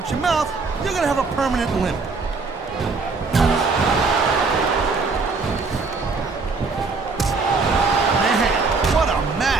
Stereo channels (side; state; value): left; quieter; 4.2 dB